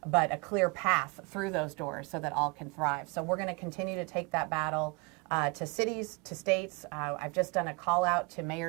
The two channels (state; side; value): quieter; left; 29.0 dB